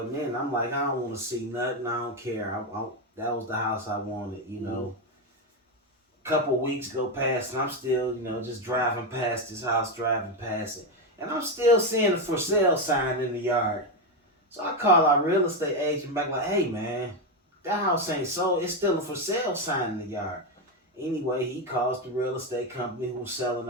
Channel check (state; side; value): normal; both; correlation 0.08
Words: in. I'm like, I don't want to see nothing. I don't care. That was the house I wanted. Couple weeks go past, and I'm still just driving past this house, driving past it. And I'm still seeing a for sale sign in the yard. So I call our real estate agent back like, hey man, that house ain't sold. It's still a for sale sign in the yard. Anyway, he calls the real estate company who was selling